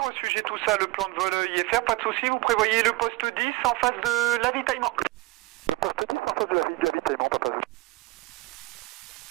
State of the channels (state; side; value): quieter; left; 21.5 dB